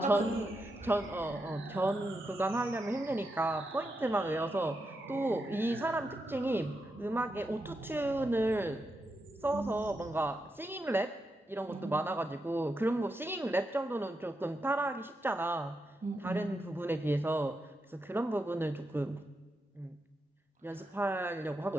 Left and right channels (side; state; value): both; normal; correlation 0.85